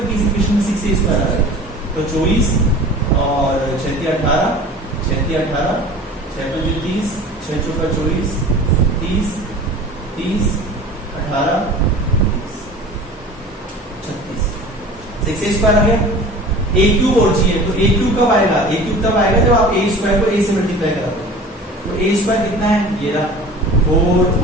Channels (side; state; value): both; normal; correlation 0.41